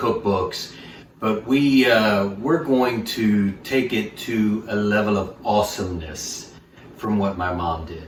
but we're going to take it to a level of awesomeness from what my mom did.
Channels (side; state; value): both; identical; correlation 1.00